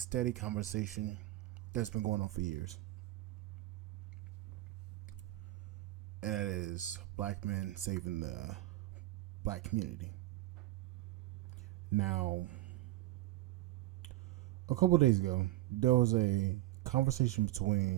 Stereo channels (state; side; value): quieter; left; 17.2 dB